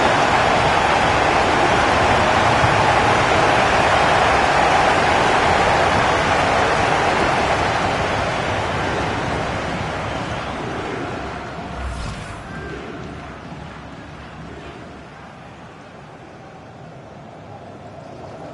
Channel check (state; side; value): identical; both; correlation 1.00